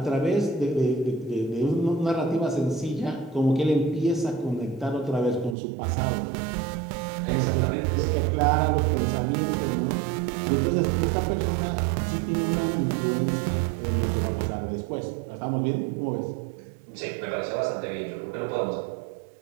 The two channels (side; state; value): left; drops out; at 5.6 s